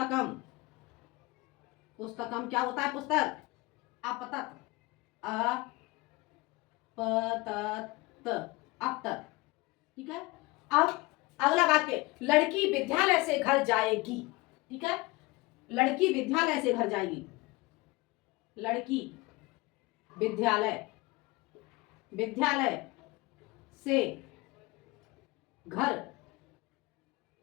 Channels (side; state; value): right; quieter; 22.6 dB